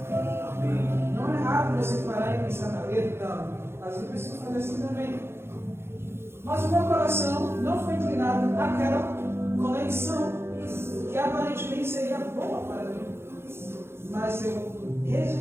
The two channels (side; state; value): left; late; 0.12 ms